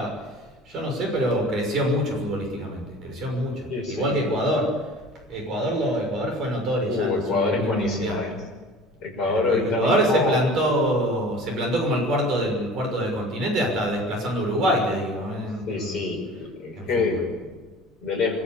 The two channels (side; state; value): both; normal; correlation 0.43